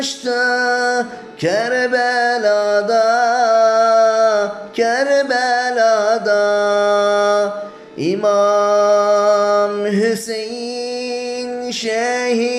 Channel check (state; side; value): identical; both; correlation 1.00